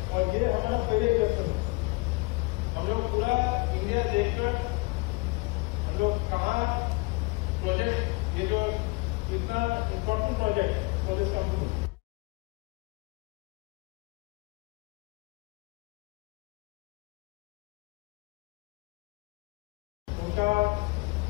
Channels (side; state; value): right; quieter; 26.0 dB